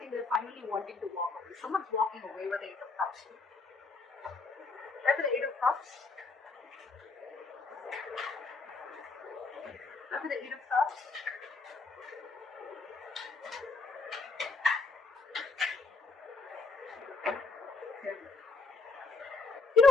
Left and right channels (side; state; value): right; quieter; 4.0 dB